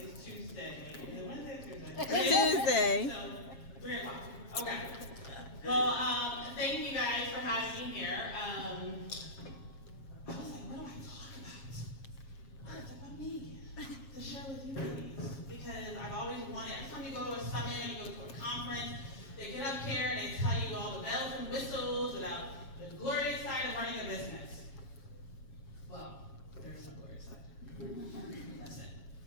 Tuesday. Is it Wednesday or Tuesday? Tuesday. So, 3 o'clock. Okay. Well, thank you guys for having me here. I was like, what do I talk about? What's about me? To share with you ladies. Because I've always wanted, every time you go to a summit and you go to a conference, they get up here and they tell you all the bells and whistles about the glorious side of running a business. Well, there's no glorious side. That's it.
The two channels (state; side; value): late; right; 7.4 ms